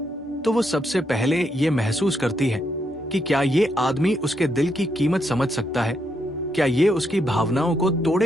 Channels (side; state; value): both; normal; correlation 0.78